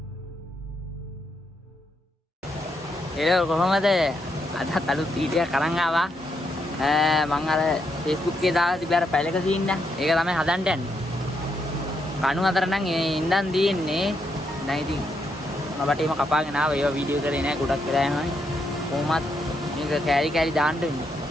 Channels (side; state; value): both; normal; correlation 0.79